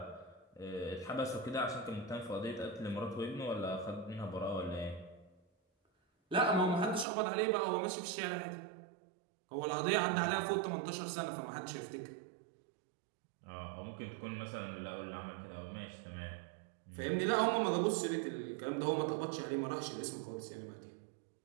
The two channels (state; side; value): drops out; left; at 7.1 s